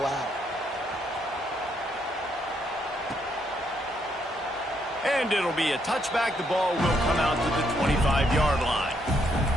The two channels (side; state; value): both; normal; correlation 0.74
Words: And it'll be a touchback. The ball will come out to the 25-yard line.